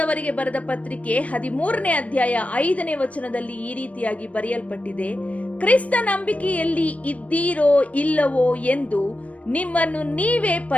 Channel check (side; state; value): right; late; 0.066 ms